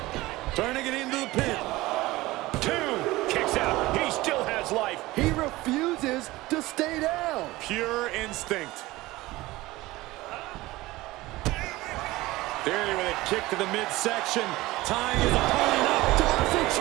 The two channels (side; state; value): left; quieter; 19.0 dB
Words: Trying to get into the pin. 2. Kicks out. He still has life. He refuses to stay down. Pure instinct. Theory with a kick to the midsection. Tying his opponent up. Tommaso